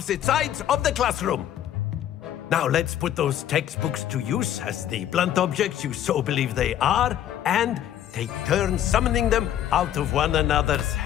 sides of the classroom. Now let's put those textbooks to use as the blunt objects you so believe they are, and take turns summoning them out of one another's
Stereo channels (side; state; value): right; quieter; 11.1 dB